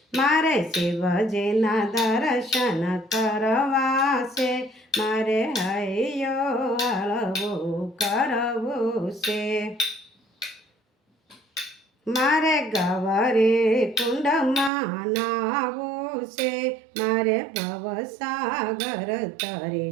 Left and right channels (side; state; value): left; drops out; at 14.7 s